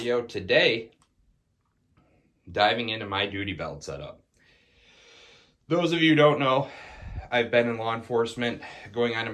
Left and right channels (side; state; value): both; identical; correlation 1.00